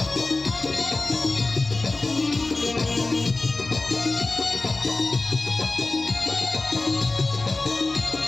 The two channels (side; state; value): right; quieter; 3.3 dB